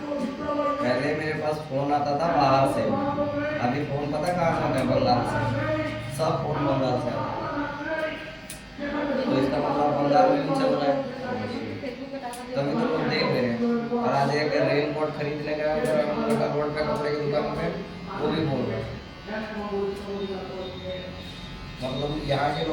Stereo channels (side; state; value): both; identical; correlation 1.00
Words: पहले मेरे पास फोन आता था बाहर से, अभी फोन पता कहाँ से आता है? बंगाल से। सब फोन बंगाल से आता है। तो इसका मतलब बंगाल में भी चल रहा है, ফেসবুকে টাকা দিয়ে तभी तो लोग देख रहे हैं। और आज एक रेन कोट खरीदने गया रोड पे कपड़े की दुकान पे, वो भी बोल रहे हैं। मतलब यहाँ के